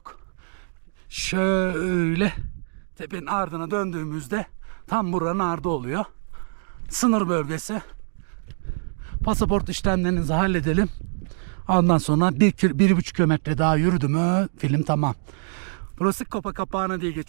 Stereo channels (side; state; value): left; silent; digital silence